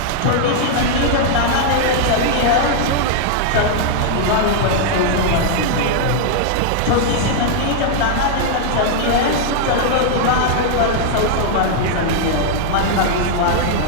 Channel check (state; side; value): different; both; correlation -0.01